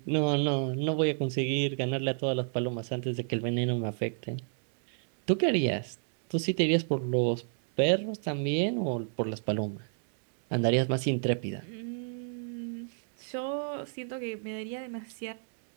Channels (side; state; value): left; silent; digital silence